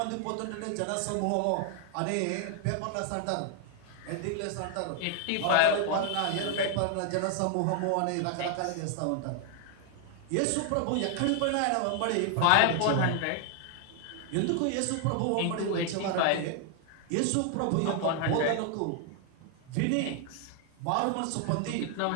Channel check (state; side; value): different; both; correlation 0.00